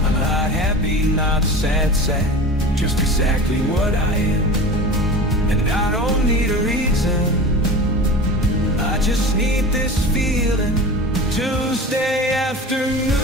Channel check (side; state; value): both; normal; correlation 0.33